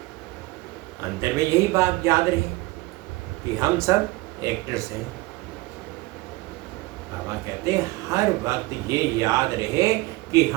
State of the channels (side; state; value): left; quieter; 21.3 dB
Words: अंतर में यही बात याद रहे कि हम सब एक्टर्स हैं। बाबा कहते हैं हर वक्त ये याद रहे कि